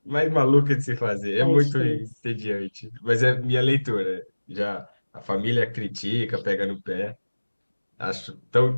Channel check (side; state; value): both; inverted; correlation -1.00